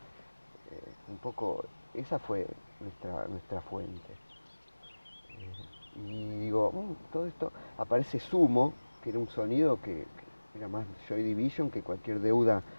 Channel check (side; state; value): both; inverted; correlation -1.00